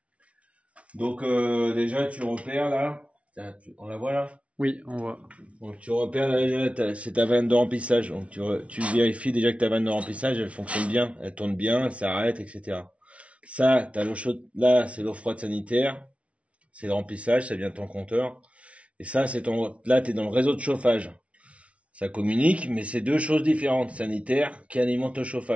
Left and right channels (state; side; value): late; left; 0.063 ms